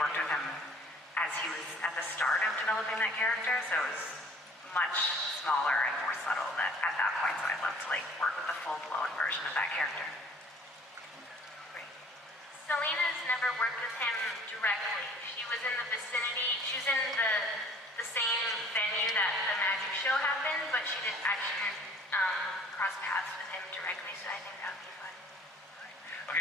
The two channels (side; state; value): both; normal; correlation 0.53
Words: with him as he was at the start of developing that character, so it was much smaller and more subtle at that point. So I'd love to like work with the full-blown version of that character. Selena's never worked with him directly. She was in the vicinity. She was in the same venue that the magic show happened, but she didn't actually cross paths with him directly. So I think that would be fun.